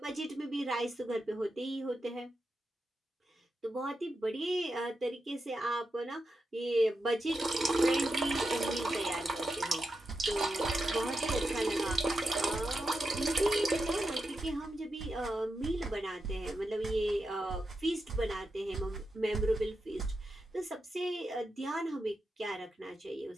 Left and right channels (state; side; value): normal; both; correlation 0.88